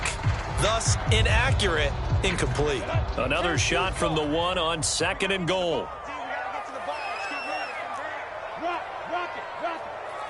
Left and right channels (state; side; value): identical; both; correlation 1.00